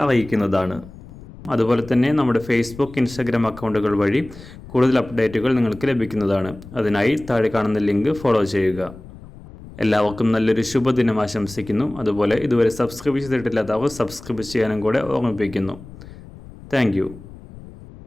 അറിയിക്കുന്നതാണ്. അതുപോലെ തന്നെ നമ്മുടെ ഫേസ്ബുക്ക്, ഇൻസ്റ്റാഗ്രാം അക്കൗണ്ടുകൾ വഴി കൂടുതൽ അപ്ഡേറ്റുകൾ നിങ്ങൾക്ക് ലഭിക്കുന്നതാണ്. അതിനായി താഴെ കാണുന്ന ലിങ്ക് ഫോളോ ചെയ്യുക. എല്ലാവർക്കും നല്ലൊരു ശുഭദിനം ആശംസിക്കുന്നു. അതുപോലെ ഇതുവരെ സബ്സ്ക്രൈബ് ചെയ്തിട്ടില്ലാത്തവർ സബ്സ്ക്രൈബ് ചെയ്യാനും കൂടെ ഓർമ്മിപ്പിക്കുന്നു. താങ്ക്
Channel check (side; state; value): left; noise; rumble, 17 dB below the sound